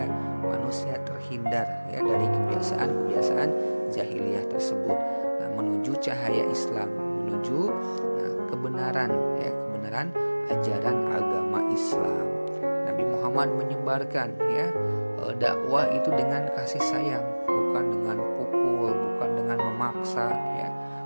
manusia terhindar ya dari kebiasaan-kebiasaan jahiliyah tersebut. Nah, menuju cahaya Islam, menuju kebenaran ya, kebenaran ajaran agama Islam. Nabi Muhammad menyebarkan ya dakwah itu dengan kasih sayang, bukan dengan pukul, bukan dengan memaksa ya,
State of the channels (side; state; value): both; inverted; correlation -1.00